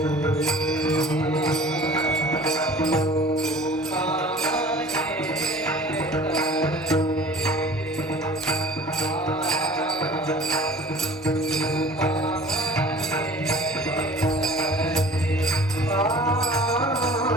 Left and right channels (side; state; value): both; normal; correlation 0.45